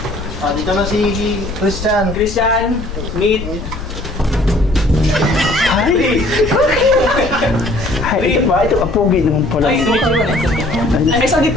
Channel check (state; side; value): noise; left; rumble, 9 dB below the sound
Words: Dito na si Christian. Christian, meet. Hi! Hi, ito ba? Ito, apogi naman pala. Ay, ay, sa